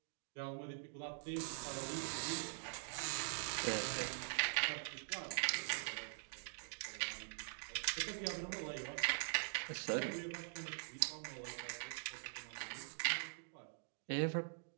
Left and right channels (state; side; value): silent; left; digital silence